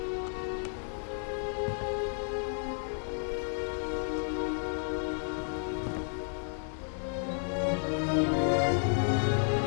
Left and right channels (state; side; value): silent; right; 56 dB below the other